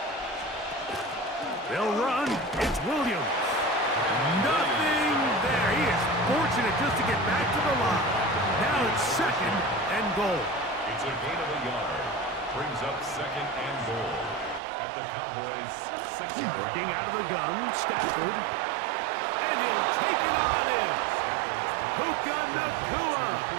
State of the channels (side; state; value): left; drops out; at 14.6 s